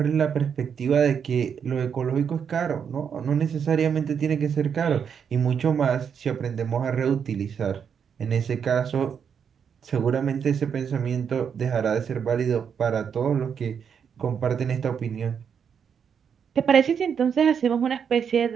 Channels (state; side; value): quieter; left; 7.3 dB